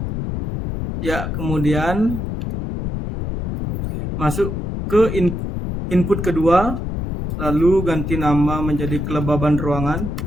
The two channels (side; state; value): left; noise; rumble, 4 dB below the sound